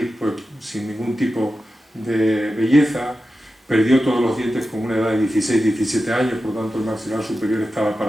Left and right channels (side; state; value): both; normal; correlation 0.92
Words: pues sin ningún tipo de belleza, perdió todos los dientes con una edad de 16-17 años, por lo tanto el maxilar superior estaba